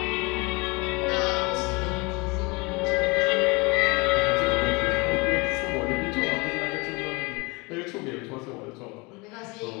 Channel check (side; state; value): right; quieter; 27.1 dB